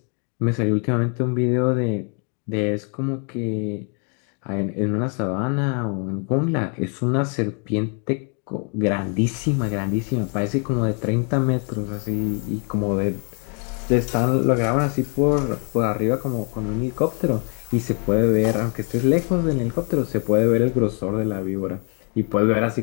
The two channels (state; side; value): quieter; right; 39.5 dB